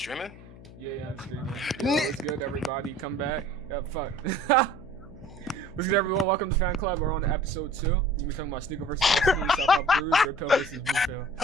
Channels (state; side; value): noise; left; hum, 18 dB below the sound